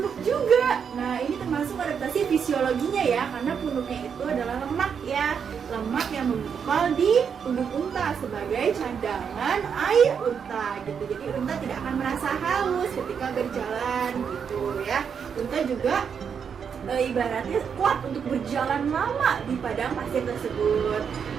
juga. Nah, ini termasuk adaptasi fisiologinya ya, karena punuknya itu adalah lemak ya, lemak yang menggumpal di punuk unta sebagai cadangan air unta gitu. Jadi unta tidak akan merasa haus ketika berjalan gitu ya. Unta juga ibaratnya kuat untuk berjalan lama di padang pasir tersebut.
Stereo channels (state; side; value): quieter; left; 7.0 dB